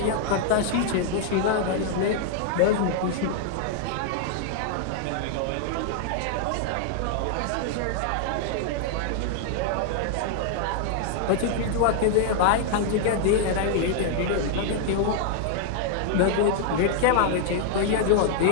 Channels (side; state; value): both; different; correlation -0.01